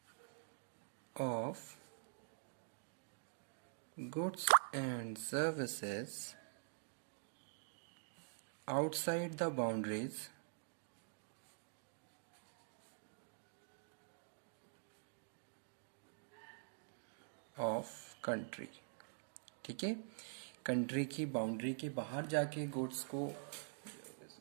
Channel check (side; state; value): left; silent; digital silence